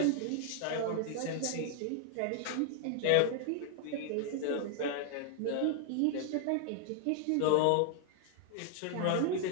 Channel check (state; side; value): different; both; correlation 0.00